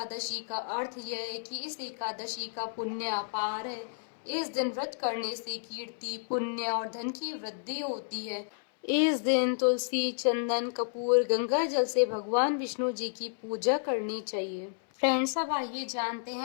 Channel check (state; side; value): silent; right; 57 dB below the other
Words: का अर्थ यह है कि इस एकादशी का पुण्य अपार है। इस दिन व्रत करने से कीर्ति, पुण्य और धन की वृद्धि होती है। इस दिन तुलसी, चंदन, कपूर, गंगा जल से भगवान विष्णु जी की पूजा करनी चाहिए। फ्रेंड्स, अब आइए जानते